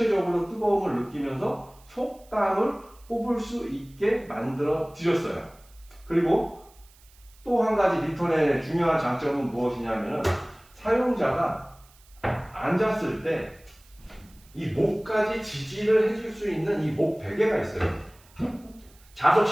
뜨거움을 느끼면서 속담을 뽑을 수 있게 만들어 드렸어요. 그리고 또 한 가지 리턴의 중요한 장점은 무엇이냐면, 사용자가 앉았을 때 이 목까지 지지를 해줄 수 있는 이 목 베개가 있어요.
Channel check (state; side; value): noise; right; hiss, 28 dB below the sound